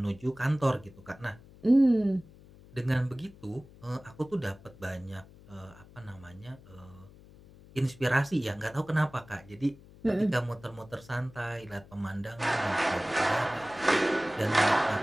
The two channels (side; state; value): left; noise; hum, 22 dB below the sound